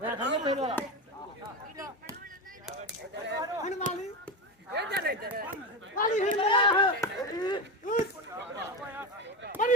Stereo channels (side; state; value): both; normal; correlation 0.18